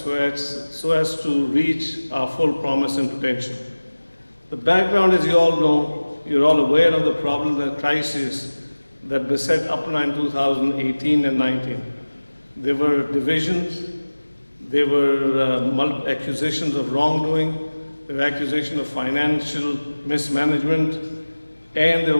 as to reach our full promise and potential. The background, as you all know, you're all aware of the problem and crisis that beset APPNA in 2018 and 19. There were divisions, there were accusations of wrongdoing, there were accusations of financial mismanagement, and there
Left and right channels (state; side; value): inverted; both; correlation -1.00